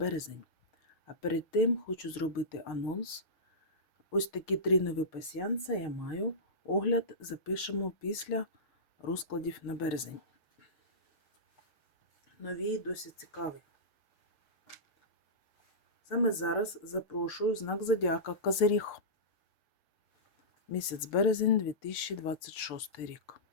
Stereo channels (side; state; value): right; late; 6.6 ms